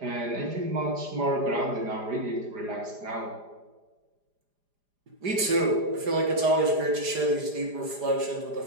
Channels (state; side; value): late; left; 4.9 ms